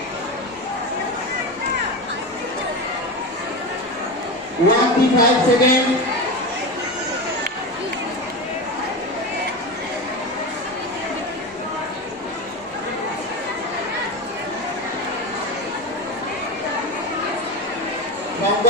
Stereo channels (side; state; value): both; normal; correlation 0.21